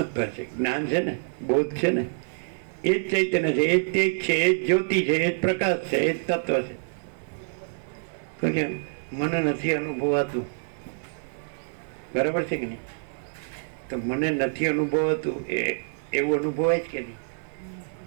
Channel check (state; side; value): silent; left; digital silence